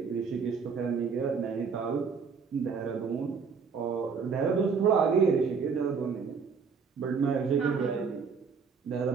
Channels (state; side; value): quieter; left; 5.7 dB